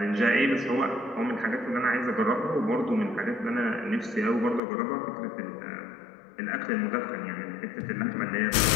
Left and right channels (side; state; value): right; drops out; at 4.6 s